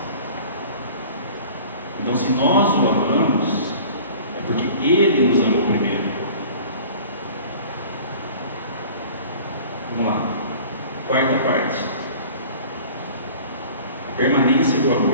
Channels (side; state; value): both; inverted; correlation -0.44